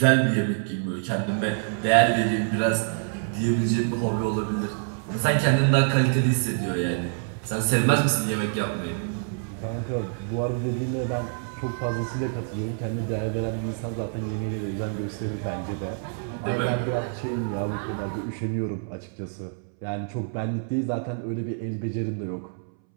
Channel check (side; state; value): left; silent; 61 dB below the other